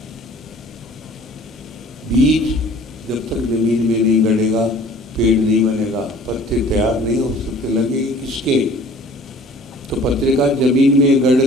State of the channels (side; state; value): both; normal; correlation 0.49